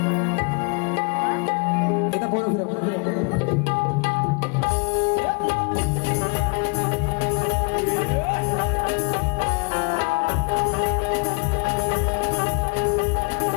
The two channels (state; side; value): quieter; right; 34.2 dB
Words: एकदा बोला फिरव.